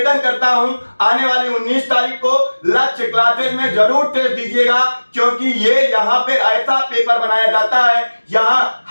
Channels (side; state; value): both; inverted; correlation -1.00